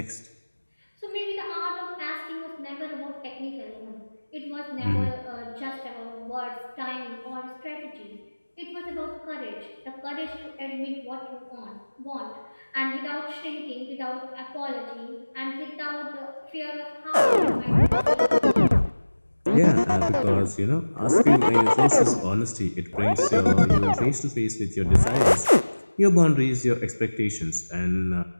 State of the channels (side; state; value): both; inverted; correlation -1.00